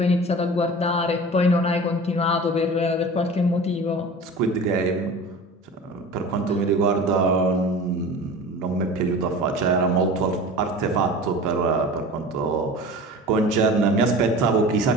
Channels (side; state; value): both; normal; correlation 0.37